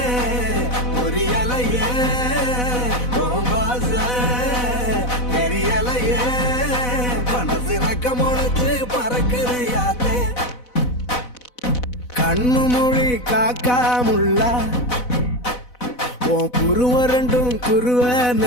பொரியலையே ஓம்பாச தெரியலையே மனசு ரக்க முளைச்சு பறக்குது யாத்தே கண்ணு மொழி காக்காமுள்ள உன் குருவ ரெண்டும் குருவ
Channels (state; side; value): late; right; 4.0 ms